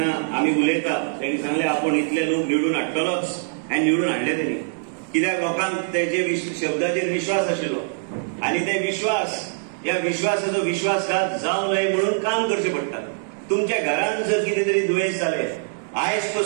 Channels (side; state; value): left; silent; 62 dB below the other